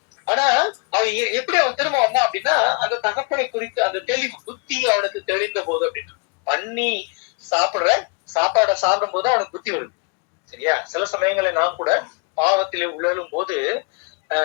ஆனா அவன் எப்படி அவன் திரும்ப வந்தான் அப்படின்னா, அந்த தகப்பனை குறித்து அந்த தெளிவு புத்தி அவனுக்கு தெரிந்த போது அப்படின்னு பண்ணி சாப்பிடுற சாப்பாடை சாப்பிடும் போது அவனுக்கு புத்தி வருது. சரியா? சில சமயங்களை நாம் கூட பாவத்திலே உழலும் போது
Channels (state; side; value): quieter; right; 31.6 dB